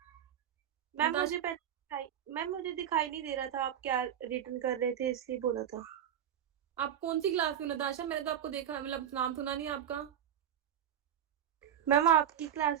Ma'am Natasha- मुझे मैम मुझे दिखाई नहीं दे रहा था आप क्या रिटर्न कर रहे थे, इसलिए बोला था। आप कौन सी क्लास में नताशा? मैंने तो आपको देखा, मतलब नाम सुना नहीं आपका। मैम आपकी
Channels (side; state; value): left; quieter; 9.6 dB